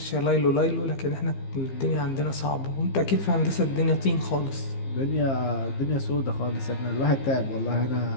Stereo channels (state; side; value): late; right; 15 ms